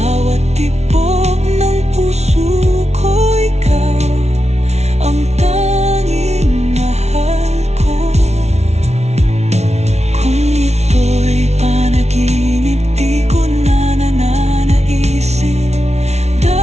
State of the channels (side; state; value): left; late; 0.31 ms